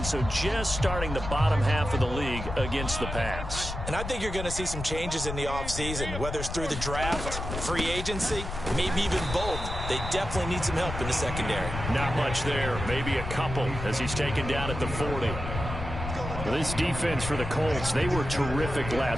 so just starting the bottom half of the league against the pass. And I think you're going to see some changes in the offseason, whether it's through the draft, free agency, maybe even both. They definitely need some help in the secondary. Not much there, maybe a couple as he's taken down at the 40. This defense for the Colts, they were terrific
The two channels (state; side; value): noise; left; rumble, 6 dB below the sound